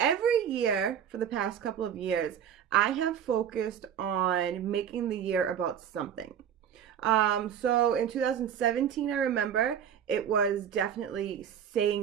year for the past couple of years, I have focused on making the year about something. So in 2017, I remember it was definitely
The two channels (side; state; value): left; quieter; 8.8 dB